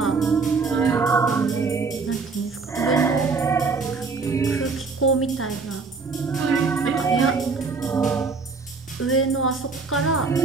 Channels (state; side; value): quieter; left; 4.5 dB